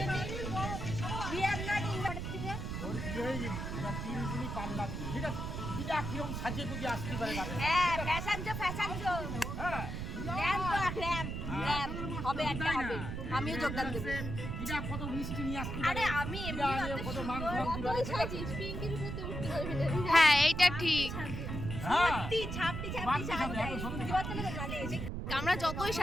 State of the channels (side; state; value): right; noise; rumble, 4 dB below the sound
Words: We are not invited থেকে। ওর বিয়ে হয়ে গেলি, ওরা 3 দিনই পাল্লা দিবি, ঠিক আছে? দিদা কিরকম সাজিয়ে গুজিয়ে আসতে পারে না? হ্যাঁ, ফ্যাশন শো। হ্যাঁ, ল্যাম্প হবে একটা হবে। আমিও যোগদান দেব। দিদা কত মিষ্টি নিয়ে আসতে পারে। আরে আমি এমনি কত মাংস দিবে। সাজিস পিঙ্কির উপরে উঠতে পারবি না। হ্যাঁ, এইটা ঠিক। হ্যাঁ, ছাপড়ি আমরা যতই